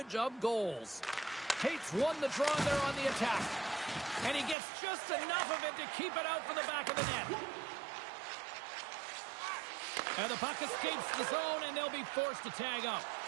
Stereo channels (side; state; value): left; drops out; at 4.5 s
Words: of goals. Tate's won the draw there on the attack. And he gets just enough of it to keep it out for the back of the net. And the puck escapes the zone, and they'll be forced to tag up.